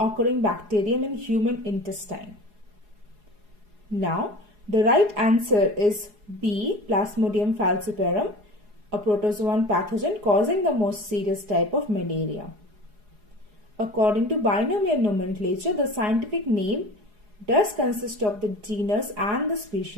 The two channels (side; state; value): left; late; 4.8 ms